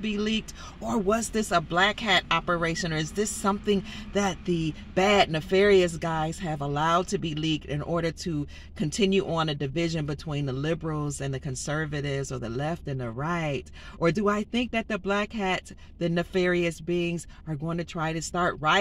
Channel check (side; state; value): both; identical; correlation 1.00